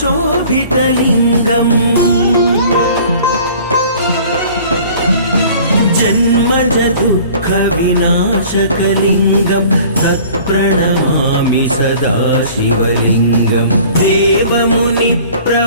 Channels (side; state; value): both; inverted; correlation -0.49